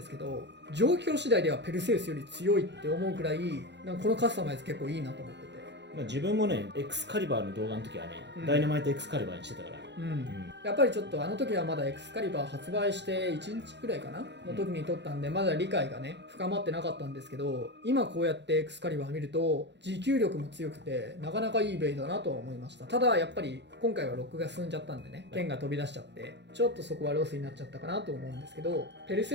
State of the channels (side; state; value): left; late; 0.51 ms